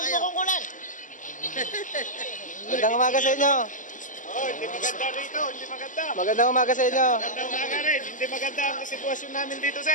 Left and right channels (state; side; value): late; right; 0.37 ms